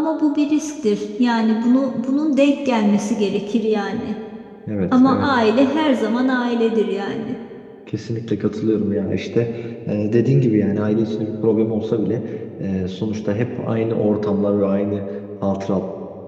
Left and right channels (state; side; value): identical; both; correlation 1.00